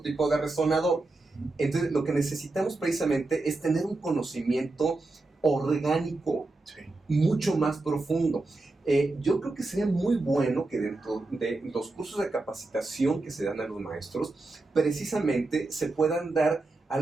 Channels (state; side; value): quieter; left; 3.2 dB